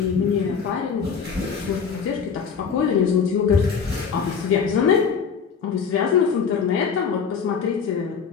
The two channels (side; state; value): right; quieter; 6.3 dB